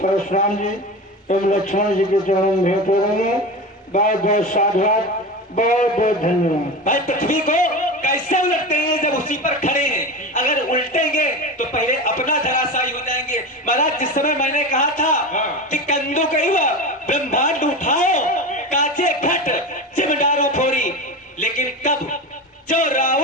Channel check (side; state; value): both; normal; correlation 0.26